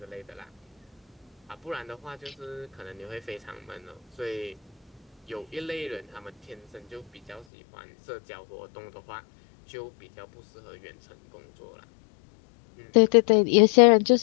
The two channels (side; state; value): right; drops out; at 7.5 s